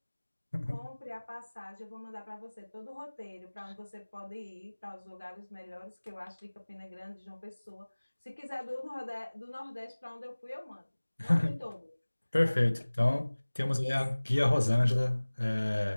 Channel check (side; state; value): both; inverted; correlation -1.00